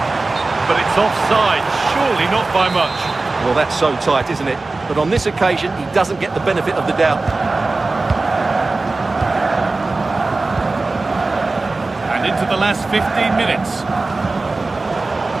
But it's offside, surely not by much. Well, that's so tight, isn't it? But on this occasion, he doesn't get the benefit of the doubt. And into the last 15 minutes.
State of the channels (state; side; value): quieter; left; 3.4 dB